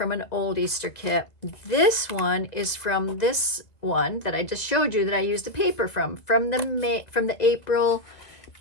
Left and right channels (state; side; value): late; right; 2.0 ms